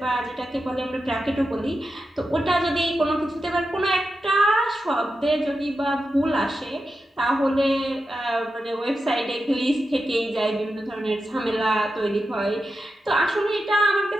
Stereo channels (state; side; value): normal; both; correlation 0.90